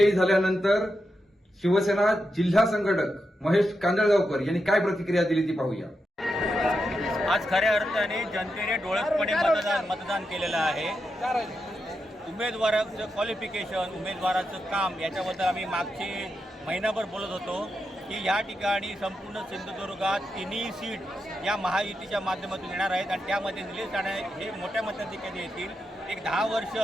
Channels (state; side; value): normal; both; correlation 0.86